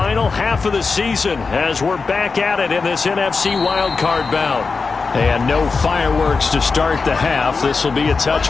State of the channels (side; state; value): right; quieter; 4.5 dB